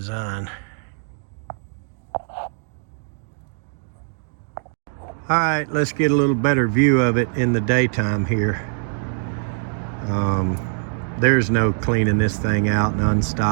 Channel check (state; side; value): silent; left; 64 dB below the other